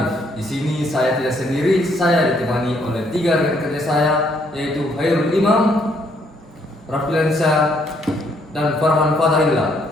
Di sini saya tidak sendiri, saya ditemani oleh 3 rekan kerja saya, yaitu Hairul Imam, Raffilansyah, dan Farhan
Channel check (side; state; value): both; normal; correlation 0.69